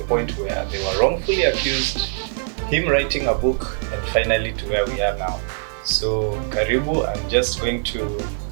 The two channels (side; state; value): left; silent; 64 dB below the other